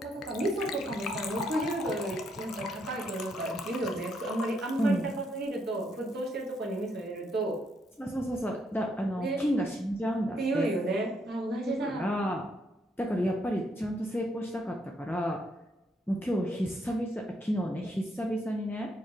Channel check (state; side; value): normal; both; correlation 0.74